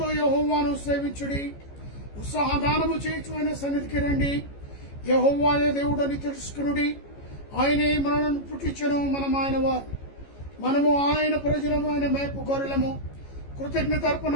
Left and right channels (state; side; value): late; right; 14 ms